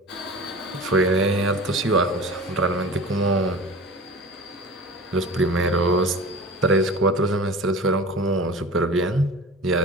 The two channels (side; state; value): both; normal; correlation 0.35